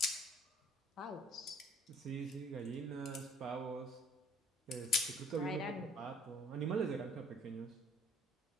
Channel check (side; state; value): both; normal; correlation 0.56